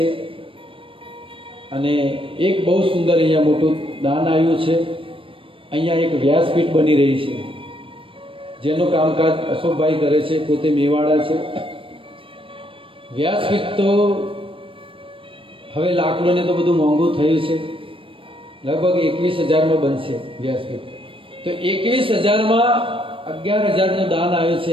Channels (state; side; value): late; left; 0.25 ms